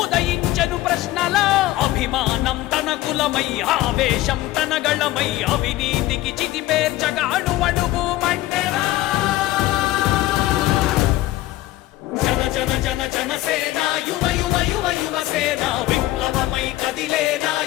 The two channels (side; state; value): right; quieter; 16.1 dB